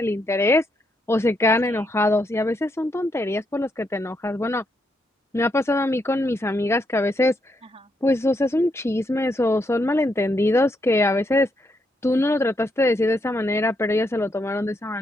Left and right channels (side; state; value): both; normal; correlation 0.78